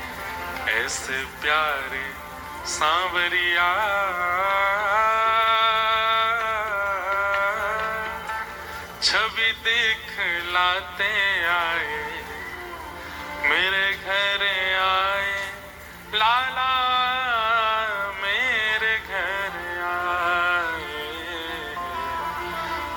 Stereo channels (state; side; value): identical; both; correlation 1.00